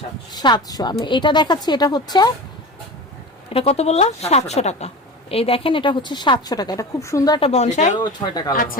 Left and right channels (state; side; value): normal; both; correlation 0.31